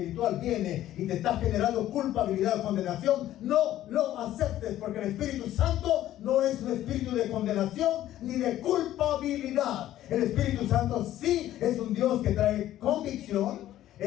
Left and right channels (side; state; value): right; quieter; 13.2 dB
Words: viene y te está generando culpabilidad o condenación, no lo aceptes, porque el Espíritu Santo no es un espíritu de condenación ni de culpabilidad. El Espíritu Santo sí es un Dios que trae convicción,